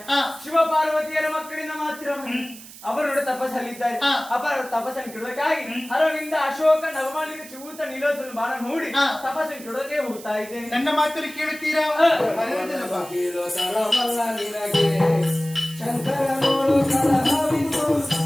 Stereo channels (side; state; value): right; noise; hiss, 17 dB below the sound